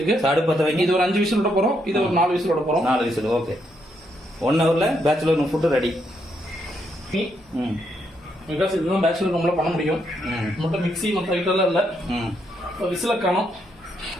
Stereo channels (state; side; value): normal; both; correlation 0.77